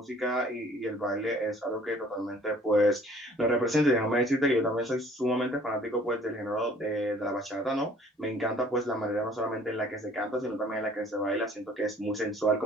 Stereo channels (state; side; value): normal; both; correlation 0.55